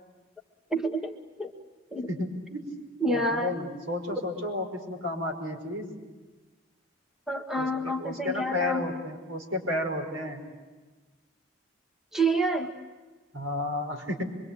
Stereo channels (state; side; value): normal; both; correlation 0.38